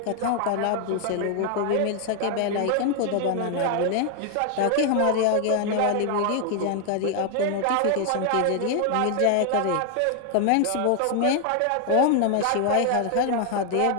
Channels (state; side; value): different; both; correlation 0.00